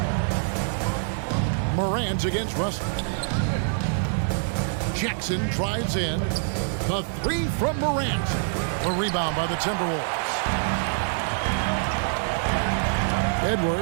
Morant against Russell. Jackson drives in. The 3 from Morant. The rebound by the Timberwolves.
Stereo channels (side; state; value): left; silent; digital silence